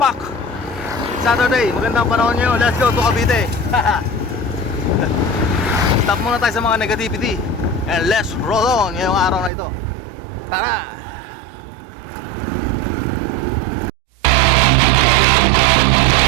Saturday, magandang panahon nyo. Let's go to Cavite. Stop muna tayo sa mga negativity and let's roll on ngayong araw na ito. Tara!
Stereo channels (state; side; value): drops out; left; at 9.5 s